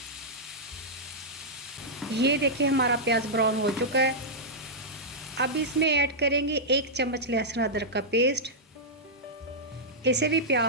ये देखिए हमारा प्याज ब्राउन हो चुका है। अब इसमें ऐड करेंगे 1 चम्मच लहसुन अदरक का पेस्ट। इसे भी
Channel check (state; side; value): normal; both; correlation -0.09